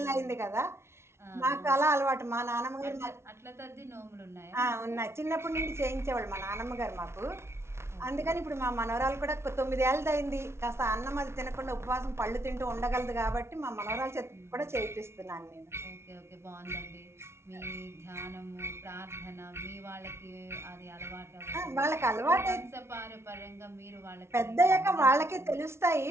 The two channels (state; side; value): late; left; 0.13 ms